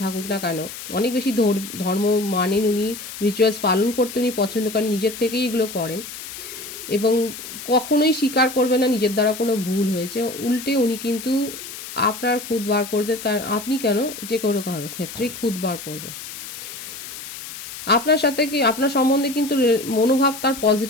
থাকুক না কেন, অনেক বেশি ধর্ম মানেন উনি, রিচুয়ালস পালন করতে উনি পছন্দ করেন, নিজের থেকেই এগুলো করেন এবং কখনোই স্বীকার করবে না নিজের দ্বারা কোনো ভুল হয়েছে। উল্টে উনি কিন্তু আপনার খুদ বার করবে, কারণ আপনি কেন, যে কোনো কারোর ক্ষেত্রেই খুদ বার করবে। আপনার সাথে কি, আপনার সম্বন্ধে কিন্তু মনোভাব তার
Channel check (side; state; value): left; noise; hiss, 11 dB below the sound